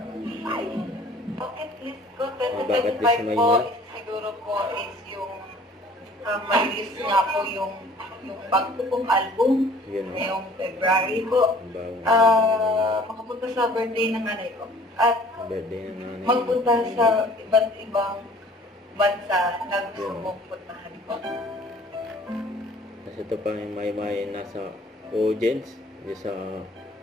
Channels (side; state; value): both; normal; correlation 0.52